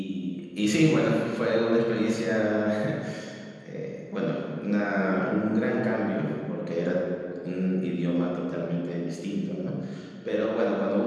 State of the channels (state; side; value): identical; both; correlation 1.00